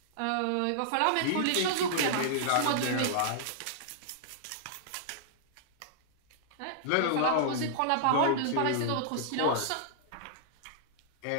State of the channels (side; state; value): both; different; correlation -0.01